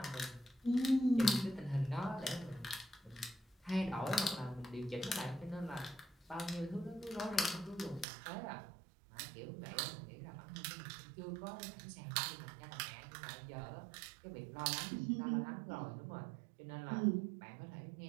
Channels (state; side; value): drops out; left; at 8.1 s